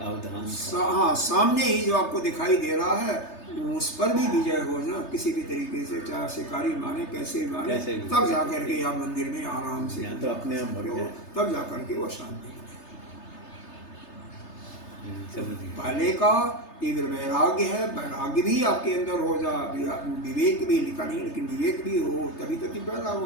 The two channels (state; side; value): late; right; 3.3 ms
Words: हाँ सामने ही जो आपको दिखाई दे रहा है, उस पर भी विजय हो ना किसी भी तरीके से, चाहे शिकारी माने कैसे माने, तब जा करके आप मंदिर में आराम से तो अपने आप तब जा करके वो शांति। पहले का तीव्र वैराग्य है, वैराग्य भी आपके अंदर हो जा, विवेक भी लिखा नहीं, लेकिन विवेक भी हो तभी तो तीव्र वैराग्य